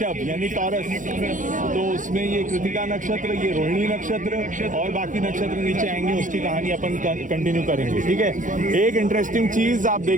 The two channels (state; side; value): late; left; 0.38 ms